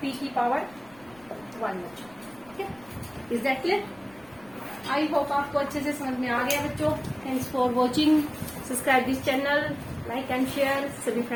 p की पावर 1 बच्चों। ठीक है, is that clear? I hope आपको अच्छे से समझ में आ गया बच्चों। Thanks for watching, subscribe this channel, like and share, सभी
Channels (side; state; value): left; noise; rumble, 26 dB below the sound